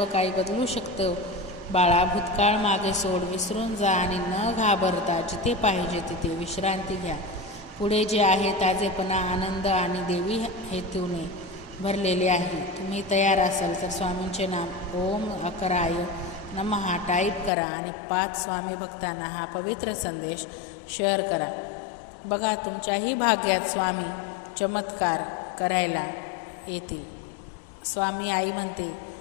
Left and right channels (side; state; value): right; drops out; at 17.5 s